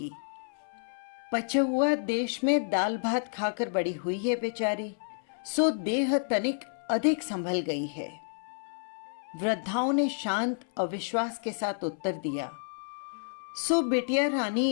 पछुआ देश में दाल भात खाकर बड़ी हुई है बेचारी, सो देह तनिक अधिक संभल गई है। वृद्धाओं ने शांत अविश्वास के साथ उत्तर दिया, सो बिटिया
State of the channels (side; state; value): right; silent; 58 dB below the other